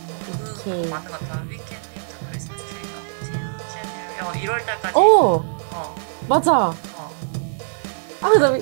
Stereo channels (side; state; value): left; silent; digital silence